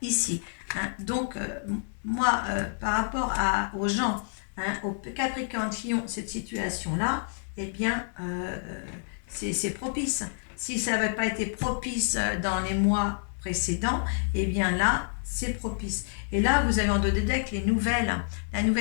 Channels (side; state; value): right; silent; digital silence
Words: ici. Hein. Donc, moi, par rapport aux gens, hein, aux Capricornes qui ont cette situation-là, eh bien, c'est propice. Si ça n'avait pas été propice dans les mois précédents, eh bien là, c'est propice. Et là, vous avez en dos des decks les nouvelles. La